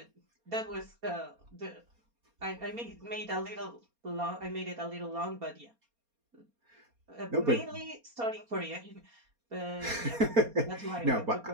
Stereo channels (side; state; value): left; late; 4.3 ms